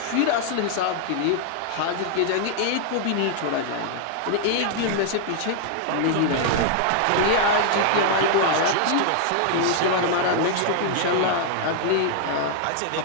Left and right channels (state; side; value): different; both; correlation 0.00